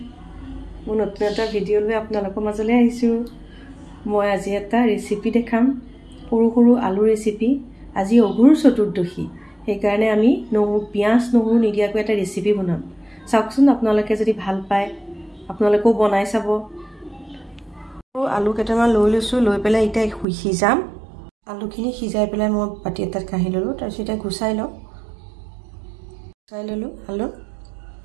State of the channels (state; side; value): drops out; left; at 20.2 s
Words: মোৰ নতুন এটা ভিডিঅ' লৈ আপোনালোকৰ মাজলৈ আহিছোঁ মই আজি এটা ৰেচিপি দেখাম সৰু সৰু আলু ৰেচিপি আজি অঘোৰ চতুৰ্দশী সেইকাৰণে আমি পিয়াজ নহৰু নিদিয়াকৈ এটা ৰেচিপি বনাম চাওকচোন আপোনালোকে যদি ভাল পায় আপোনালোকেও বনাই চাব আলু কেইটামান লৈ লৈছোঁ লৈ পেলাই এতিয়া সিজাম আলুখিনি সিজাই পেলাই মই পাতি এটাত কাঢ়ি ল'লোঁ তাৰপিছত এতিয়া গুচাই ল'লোঁ আলু